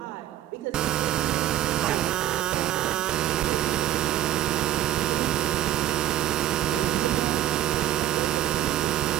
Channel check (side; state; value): left; quieter; 12.3 dB